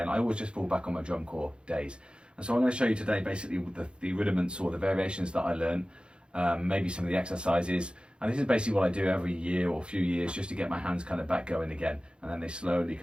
I always just fall back on my drum corps days. And so I'm going to show you today basically the rudiments or the variations that I learn, maybe some of the exercises. And this is basically what I do every year or few years just to get my hands kind of back going again. And then they slowly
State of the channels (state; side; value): late; left; 0.054 ms